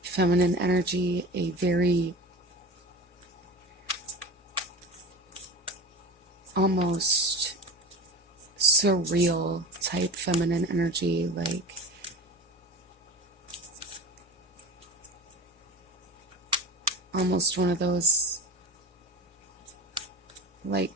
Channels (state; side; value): normal; both; correlation 0.32